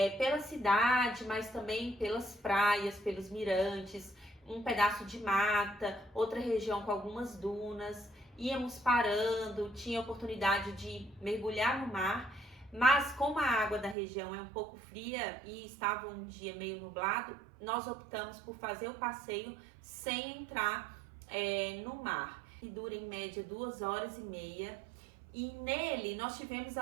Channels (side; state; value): left; drops out; at 14.0 s